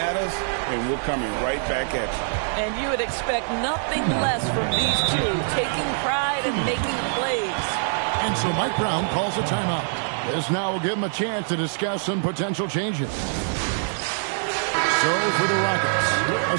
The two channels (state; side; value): silent; left; digital silence